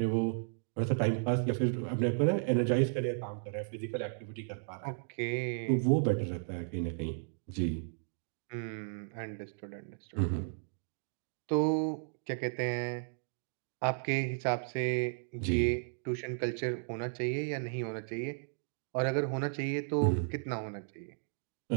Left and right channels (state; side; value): silent; left; digital silence